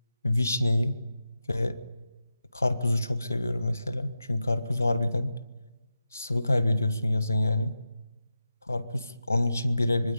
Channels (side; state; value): both; inverted; correlation -0.91